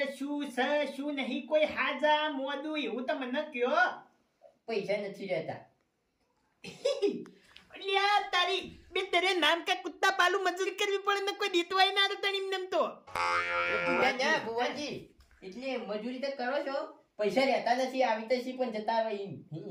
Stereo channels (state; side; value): identical; both; correlation 1.00